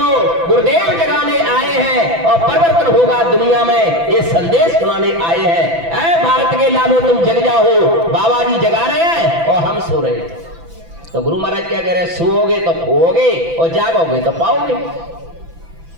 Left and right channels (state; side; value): late; left; 6.0 ms